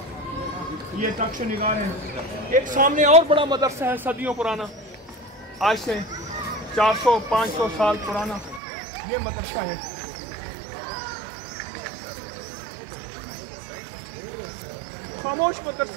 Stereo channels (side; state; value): left; drops out; at 8.6 s